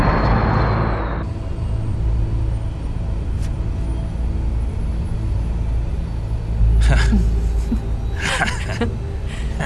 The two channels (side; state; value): both; identical; correlation 1.00